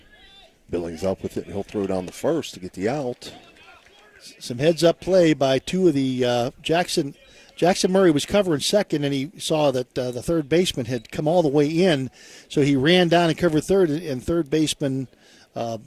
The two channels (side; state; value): both; identical; correlation 1.00